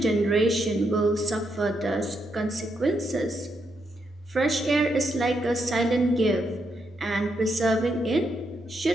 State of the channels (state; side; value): normal; both; correlation 0.80